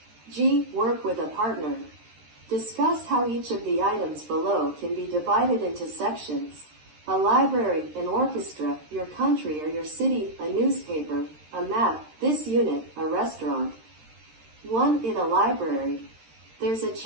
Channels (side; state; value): left; late; 13 ms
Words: G. Work with a partner. Discuss how each of the items below can be divided into sections. A library, an orchestra, your country or your city, a newspaper, a map, this unit, a restaurant. 1. In a library. There's a